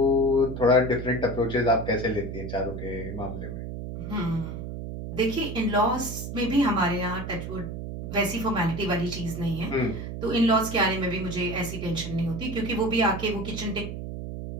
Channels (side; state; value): right; noise; hum, 7 dB below the sound